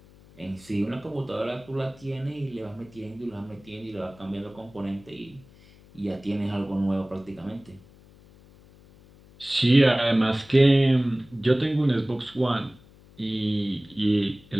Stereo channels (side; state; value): left; noise; hum, 25 dB below the sound